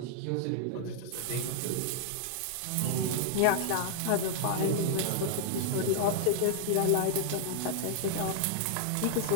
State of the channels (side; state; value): both; different; correlation -0.01